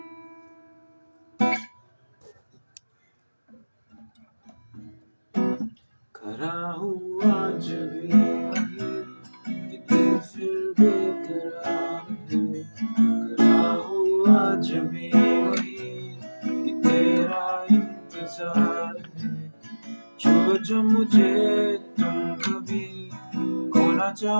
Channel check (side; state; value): both; inverted; correlation -1.00